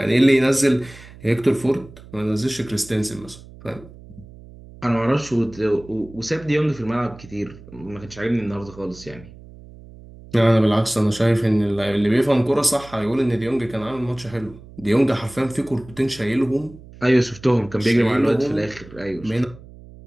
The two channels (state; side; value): noise; right; hum, 19 dB below the sound